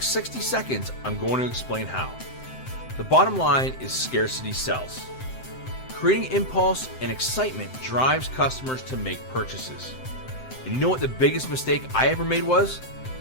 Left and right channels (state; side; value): late; right; 7.7 ms